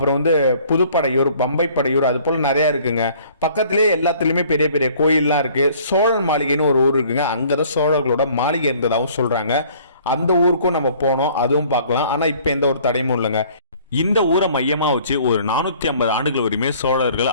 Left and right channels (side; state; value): both; inverted; correlation -0.55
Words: புதுப்படையூர், பம்பை படையூர், அது போல நிறைய இருக்குங்க. பக்கத்திலேயே எல்லாத்துலயுமே பெரிய பெரிய கோயில்லாம் இருக்கு. சோழன் மாளிகைன்னு ஒரு ஊர் இருக்குங்க. அங்கதான் சோழர்களோட மாளிகை இருந்ததாகவும் சொல்றாங்க. அந்த ஊருக்கும் நம்ம போனோம், அதுவும் பார்க்கலாம். ஆனா இப்ப எந்த ஒரு தடையும் இல்லைங்க. இந்த ஊரை மையமாக வச்சு ஒரு 450 ஆண்டுகள் வரையுமே சோழர்கள்